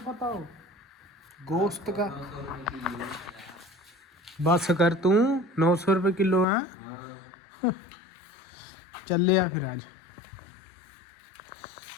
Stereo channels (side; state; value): right; drops out; at 6.5 s